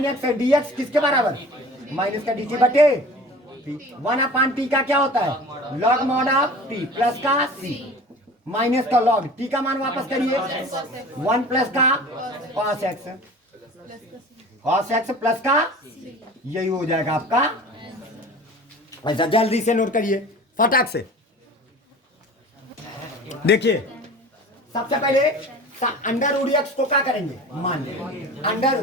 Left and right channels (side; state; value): both; normal; correlation 0.40